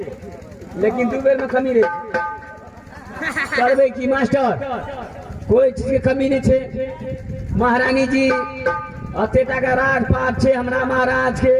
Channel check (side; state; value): both; identical; correlation 1.00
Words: लेकिन 2 बेर में कमी रे करबे की मास्टर कोई चीज के कमी नहीं छे महारानी जी अतेटा का राज पाट छे हमरा महाराज के